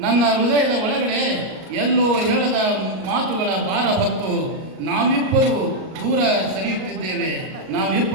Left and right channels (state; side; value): late; left; 38 ms